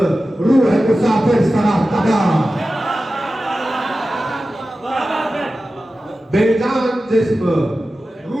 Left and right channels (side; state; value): both; normal; correlation 0.94